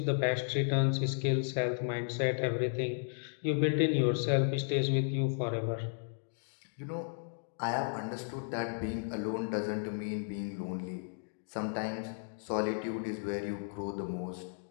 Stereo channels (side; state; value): right; silent; digital silence